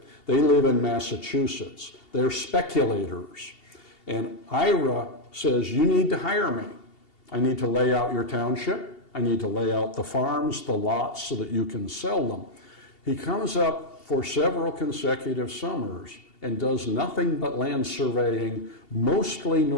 They live in Massachusetts. They're speculators. And Ira says, you need to hire me. I need to lay out your township. I need to lay out the farms, the lots, so that you can sell them. He comes up for several consecutive summers and does nothing but land surveying, mostly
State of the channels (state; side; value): late; right; 2.8 ms